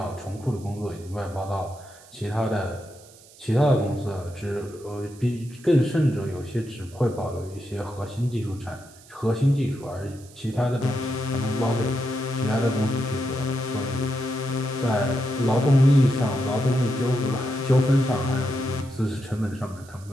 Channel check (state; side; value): noise; right; hiss, 23 dB below the sound